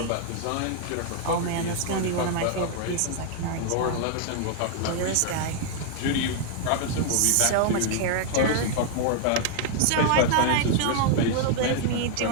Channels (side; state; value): both; different; correlation 0.00